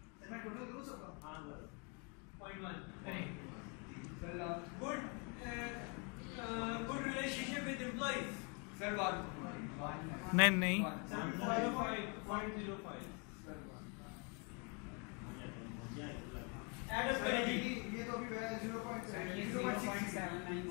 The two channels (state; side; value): quieter; right; 35.0 dB